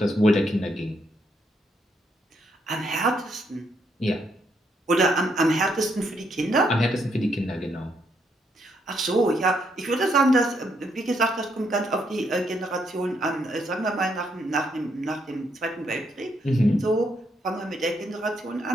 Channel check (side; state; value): both; normal; correlation 0.75